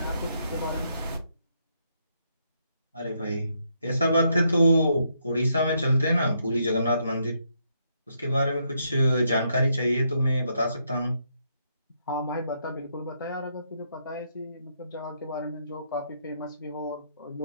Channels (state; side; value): inverted; both; correlation -0.76